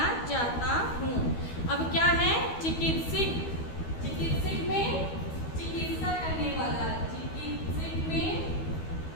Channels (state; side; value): late; right; 12 ms